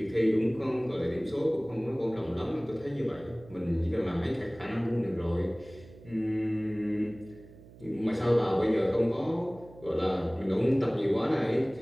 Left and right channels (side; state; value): right; noise; hum, 21 dB below the sound